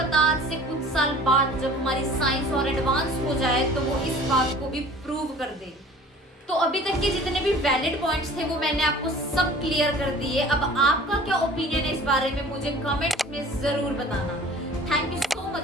आज से कुछ साल बाद जब हमारी साइंस और एडवांस हो जाए तो वो इस बात को भी प्रूव कर दे। तो अभी तक के जितने भी वैलिड पॉइंट्स थे वो मैंने आपको सब क्लियर कर दिए। अब आपका क्या ओपिनियन है इस बारे में, मुझे कमेंट्स में जरूर बताना। Thank you so much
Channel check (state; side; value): normal; both; correlation 0.46